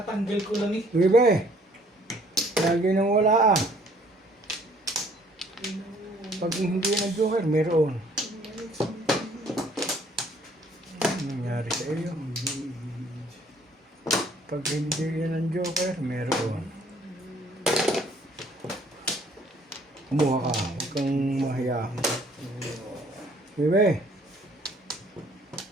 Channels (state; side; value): normal; both; correlation 0.60